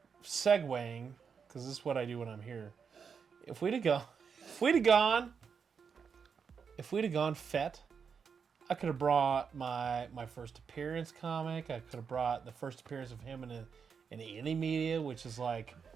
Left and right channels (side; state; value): left; quieter; 6.3 dB